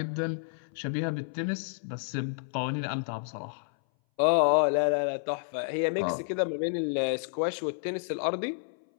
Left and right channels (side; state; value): right; silent; 58 dB below the other